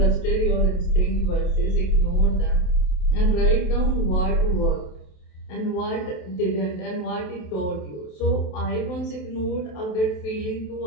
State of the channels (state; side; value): late; right; 27 ms